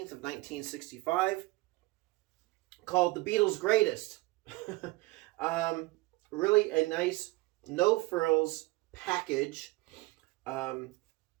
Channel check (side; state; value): left; quieter; 21.6 dB